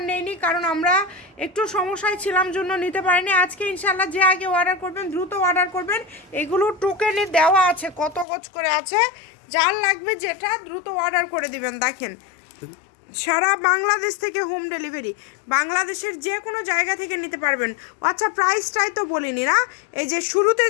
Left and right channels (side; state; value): right; drops out; at 8.2 s